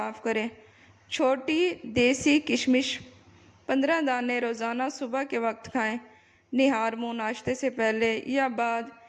کریں۔ چھوٹی دیسی کشمش 15 دانے روزانہ صبح کے وقت کھائیں۔ نہار منہ ناشتے سے پہلے یا بعد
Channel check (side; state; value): both; identical; correlation 1.00